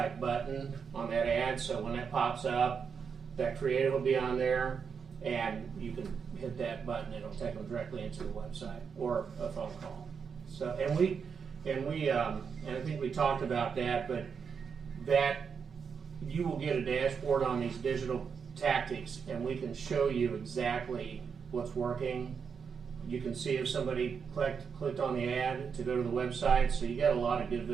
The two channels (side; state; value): left; quieter; 6.3 dB